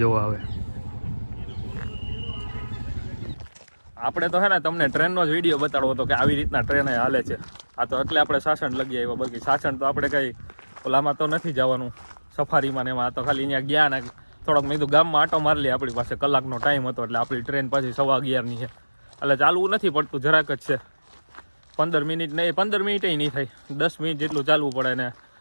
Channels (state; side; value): inverted; both; correlation -1.00